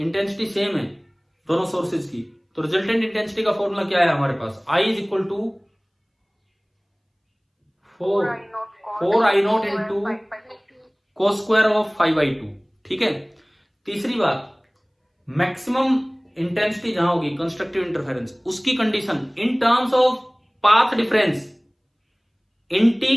सेम है दोनों सोर्सेज की, तो रिजल्टेंट इंटेंसिटी का फॉर्मूला क्या है हमारे पास? I is equal to 4I0 into cos square of 5/2। ठीक है। तीसरी बात, मैक्सिमम इंटेंसिटी जहां होगी कंस्ट्रक्टिव इंटरफेरेंस, उसकी condition in terms of path difference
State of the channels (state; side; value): identical; both; correlation 1.00